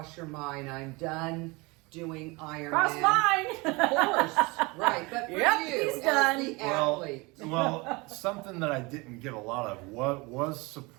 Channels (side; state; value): left; quieter; 25.7 dB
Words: your mind? I'm done doing Ironman. Cross mine. Of course, right. But for Yep, you, he's done. as the athlete. Well, something that I didn't get a lot of was